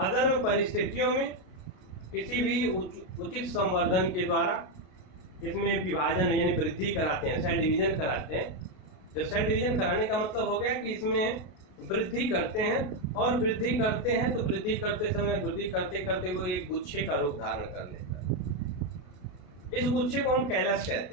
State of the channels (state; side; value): late; right; 33 ms